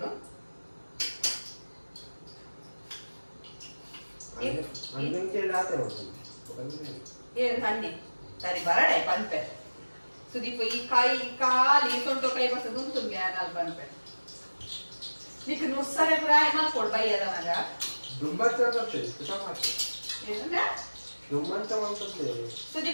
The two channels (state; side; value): inverted; both; correlation -1.00